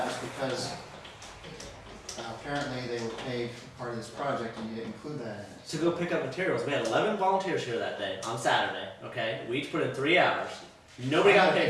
was because apparently they were paid for part of this project and you didn't include that in it. To go pick up materials. We had 11 volunteers here that day, on Saturday, okay? We each put in 3 hours. Nobody got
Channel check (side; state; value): both; identical; correlation 1.00